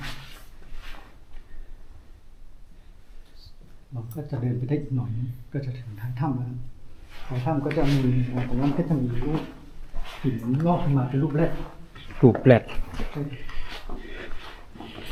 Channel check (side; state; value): both; identical; correlation 1.00